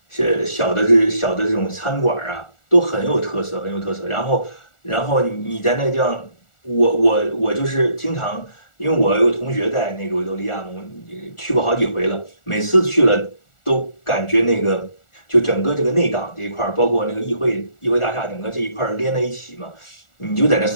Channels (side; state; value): right; late; 1.4 ms